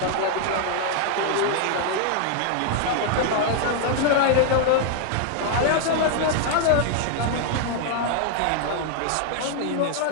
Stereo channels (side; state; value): both; different; correlation 0.00